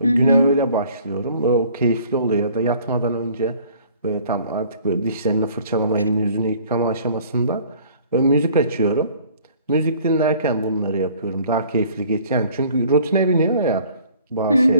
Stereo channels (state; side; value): inverted; both; correlation -0.54